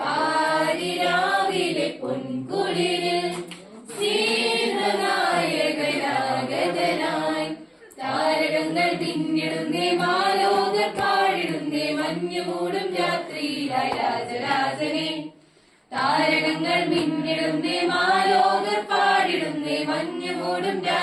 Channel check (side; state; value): both; identical; correlation 1.00